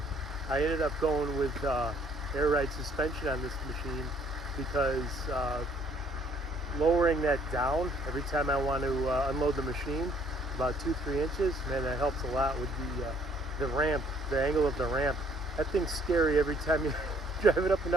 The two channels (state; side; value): normal; both; correlation 0.63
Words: I ended up going with air ride suspension on this machine because lowering that down every time I want to unload the machine, about 2-3 inches, man, that helps a lot with the ramp, the angle of the ramp. That thing's scary every time you drive it up and